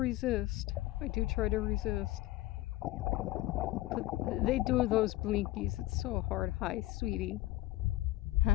I do try to resist. But they do those blinkies. It's so hard. Hi, sweetie.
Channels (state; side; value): quieter; right; 16.8 dB